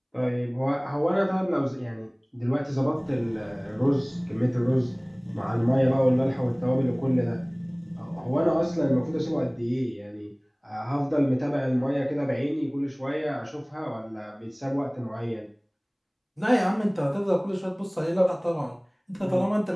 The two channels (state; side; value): identical; both; correlation 1.00